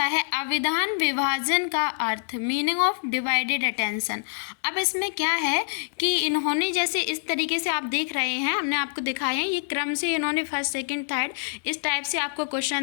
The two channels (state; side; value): silent; right; 61 dB below the other